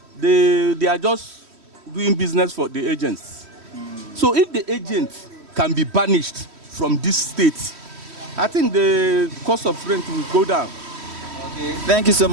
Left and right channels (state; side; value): late; left; 3.1 ms